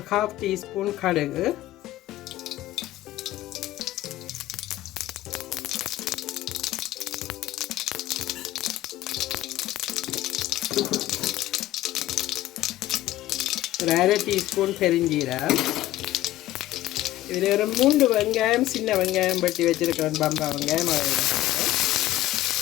1/2 டீஸ்பூன் கடுகு, ஒரு 1/2 டீஸ்பூன் பெருஞ்சீரகம். இதில் ஒரு 3 வெங்காயம், சின்ன வெங்காயம் பட்டி வச்சுருக்கேன், பம்பா வெங்காயம்.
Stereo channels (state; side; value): quieter; right; 15.3 dB